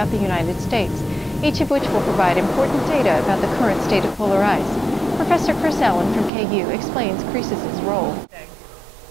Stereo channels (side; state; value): left; drops out; at 6.3 s